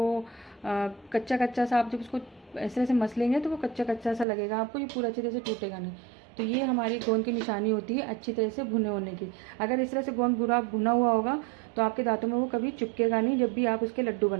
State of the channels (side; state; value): left; drops out; at 4.2 s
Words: कच्चा कच्चा सा आप जब उसको इस तरह से मसलेंगे तो वो कच्चा कच्चा सा लगेगा आपको, ये पूरा अच्छी तरह से टूटेगा नहीं। तो ये हमारी गोंद की निशानी होती है अच्छी तरह से भुने होने की। अगर इस तरह से गोंद पूरा भुना हुआ होगा तो आपके दांतों में वो कभी चिपकेगा नहीं जब भी आप उसके लड्डू